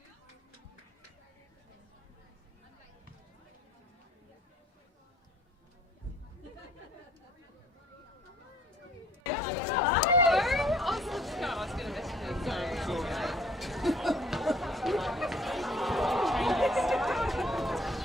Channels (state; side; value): normal; both; correlation 0.57